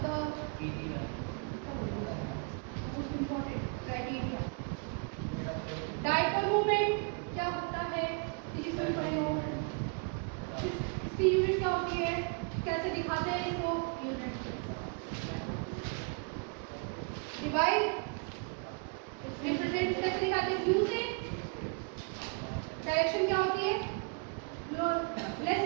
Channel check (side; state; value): left; quieter; 37.0 dB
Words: इसकी यूनिट क्या होती है, कैसे दिखाते हैं इसको, यूनिट डिवाइड रिप्रेजेंट कैसे दिखाते हैं, क्यू से। डायरेक्शन क्या होती है, जो लेस